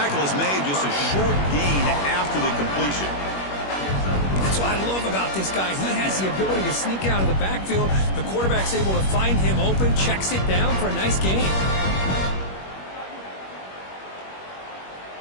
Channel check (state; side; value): late; right; 21 ms